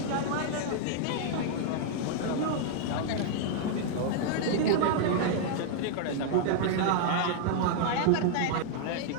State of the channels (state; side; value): different; both; correlation -0.01